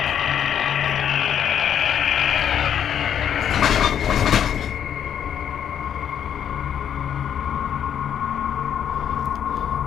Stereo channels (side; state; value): right; quieter; 9.1 dB